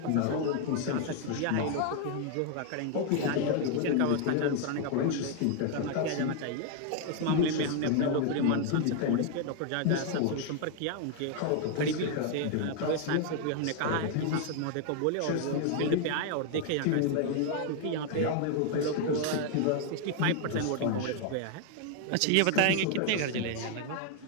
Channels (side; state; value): both; different; correlation 0.00